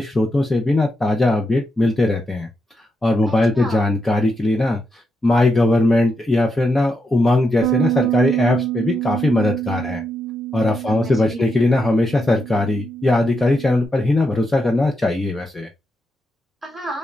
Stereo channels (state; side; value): normal; both; correlation 0.83